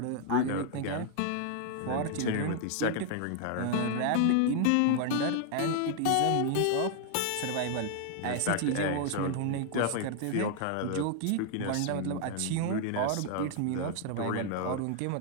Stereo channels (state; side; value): different; both; correlation 0.00